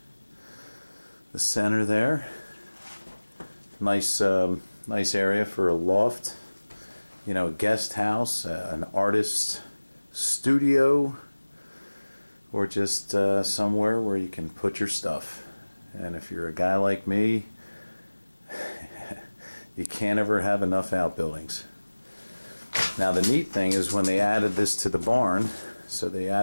center there. Nice area for a loft. You know, a guest house, an artist's studio, or just somewhere where you can put your stuff. And if you're a guy like me, you can't ever have enough outbuildings. Now the neat thing is when they added this to the barn, so they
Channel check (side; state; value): both; inverted; correlation -1.00